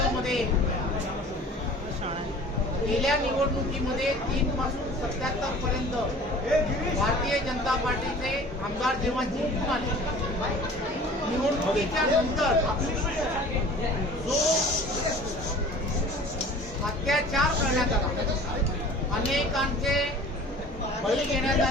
गेल्या निवडणुकीमध्ये 3 पासून 77 पर्यंत भारतीय जनता पार्टीचे आमदार जेव्हा जिंकून आले, निवडणुकीच्या नंतर जो अत्याचार करण्यात आला, अनेकांचे बळी घेण्यात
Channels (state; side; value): normal; both; correlation 0.45